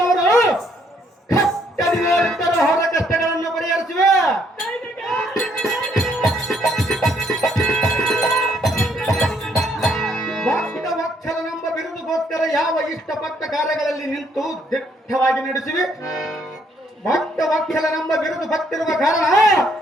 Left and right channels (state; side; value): normal; both; correlation 0.68